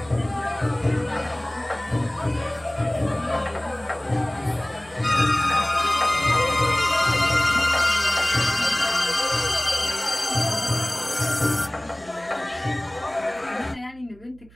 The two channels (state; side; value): noise; right; hum, 25 dB below the sound